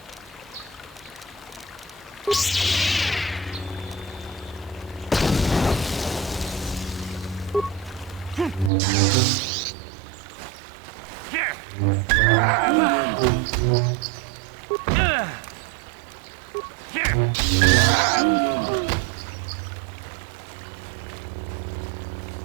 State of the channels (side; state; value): left; drops out; at 8.7 s